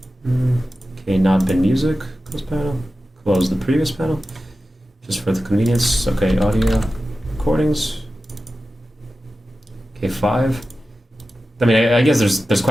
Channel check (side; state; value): both; normal; correlation 0.93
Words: Okay, not bin music. Close panel. Close the previous panel, just for the convenience. Okay, audio recordings. Okay, 5. I mean, I guess there's